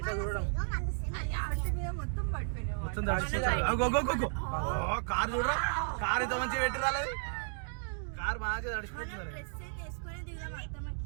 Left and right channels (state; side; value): silent; left; digital silence